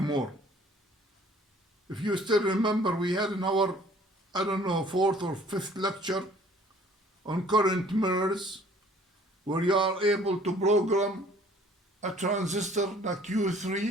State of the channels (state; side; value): normal; both; correlation 0.55